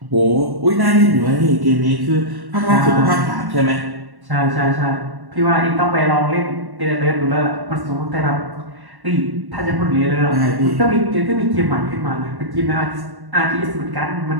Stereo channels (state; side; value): late; left; 1.1 ms